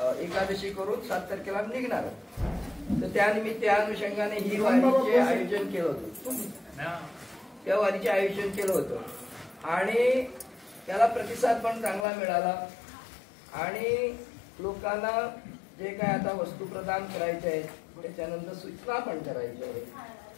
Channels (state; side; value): drops out; right; at 12.1 s